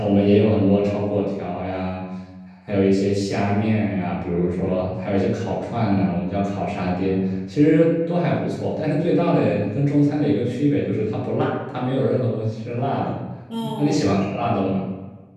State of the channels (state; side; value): identical; both; correlation 1.00